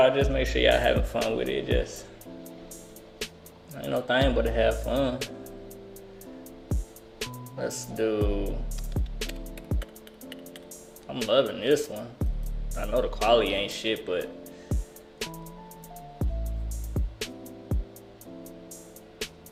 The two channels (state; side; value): identical; both; correlation 1.00